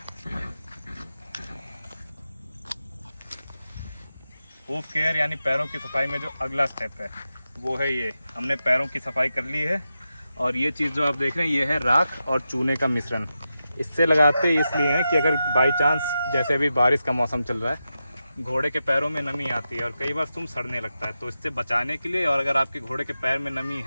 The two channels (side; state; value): both; inverted; correlation -0.90